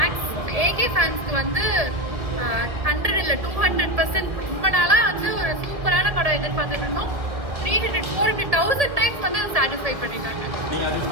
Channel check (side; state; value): left; late; 1.7 ms